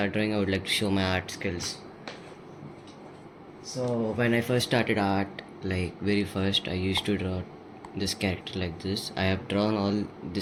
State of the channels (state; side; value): identical; both; correlation 1.00